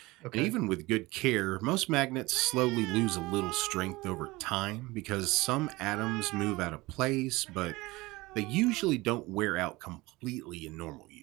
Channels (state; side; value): quieter; left; 21.3 dB